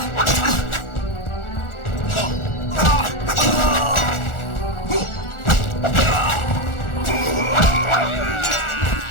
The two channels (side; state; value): right; late; 1.4 ms